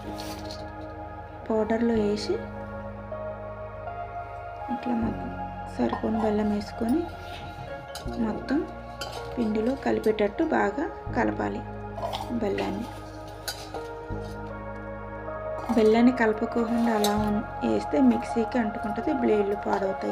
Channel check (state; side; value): identical; both; correlation 1.00